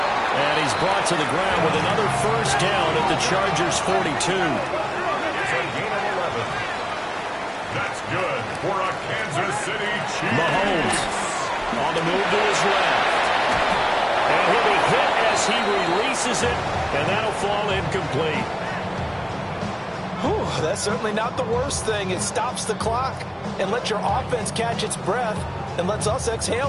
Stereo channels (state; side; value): identical; both; correlation 1.00